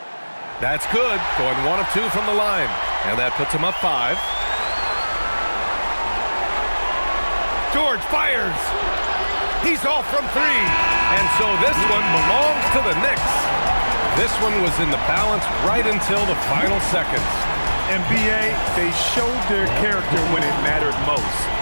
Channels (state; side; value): inverted; both; correlation -1.00